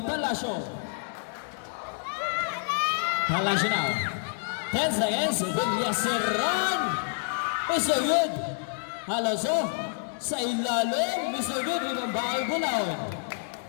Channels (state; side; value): silent; right; digital silence